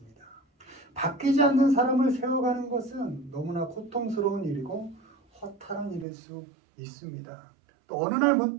바뀌지 않는 사람을 세워가는 것은 너무나 고통스러운 일이고 허탈한 일일 수 있습니다. 또 어느 날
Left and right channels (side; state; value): left; drops out; at 6.1 s